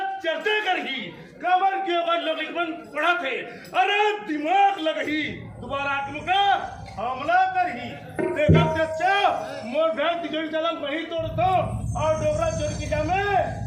चर्चा करही कबर के ओकर लोग लिखबन पढ़ा थे अरे दिमाग लगही दोबारा आत्मका हमला करही देखा चचा मोर भैंस तिजोरी चलन वही तोड़तो और डोगरा चोर की जामे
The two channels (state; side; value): identical; both; correlation 1.00